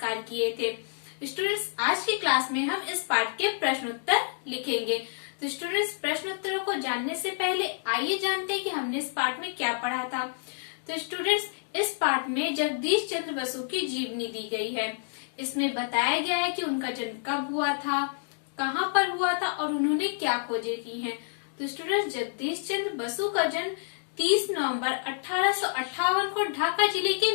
कार्य किए थे। स्टूडेंट्स, आज की क्लास में हम इस पार्ट के प्रश्न उत्तर लिखेंगे। तो स्टूडेंट्स, प्रश्न उत्तरों को जानने से पहले आइए जानते हैं कि हमने इस पार्ट में क्या पढ़ा था। तो स्टूडेंट्स, इस पार्ट में जगदीश चंद्र बसु की जीवनी दी गई है। इसमें बताया गया है कि उनका जन्म कब हुआ था, कहाँ पर हुआ था और उन्होंने क्या खोजें की हैं। तो स्टूडेंट्स, जगदीश चंद्र बसु का जन्म 30 नवंबर 1858 को ढाका जिले के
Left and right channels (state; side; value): silent; right; digital silence